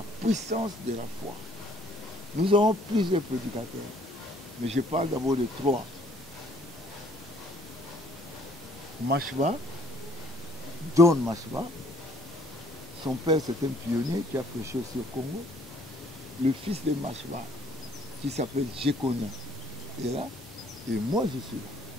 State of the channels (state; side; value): normal; both; correlation 0.61